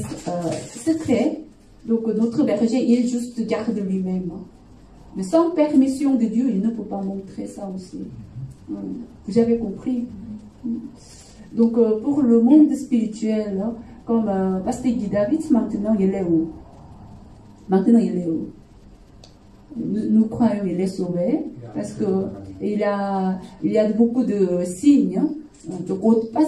secret. Donc notre berger, il juste garde lui-même. Mais sans permission de Dieu, il ne peut pas montrer ça aussi. Vous avez compris? Donc pour le monde spirituel, comme Pasteur Guy David, maintenant il est où? Maintenant il est où? Nous croyons qu'il est sauvé parce que il y a beaucoup de signes. Donc,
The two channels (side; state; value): both; identical; correlation 1.00